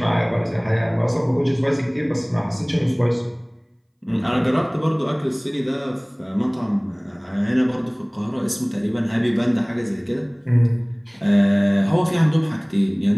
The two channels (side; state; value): both; identical; correlation 1.00